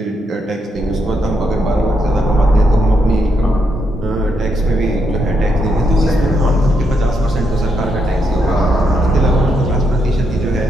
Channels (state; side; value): normal; both; correlation 0.79